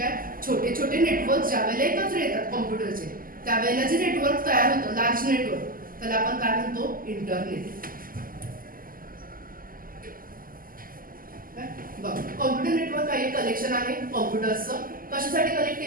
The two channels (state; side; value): late; left; 0.41 ms